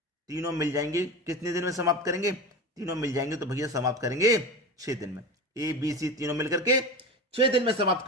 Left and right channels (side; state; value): both; normal; correlation 0.26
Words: तीनों मिल जाएंगे, कितने दिन में समाप्त करेंगे? तीनों मिल जाएंगे तो भैया समाप्त करेंगे 6 दिन में। ए बी सी तीनों मिलकर के 6 दिन में समाप्त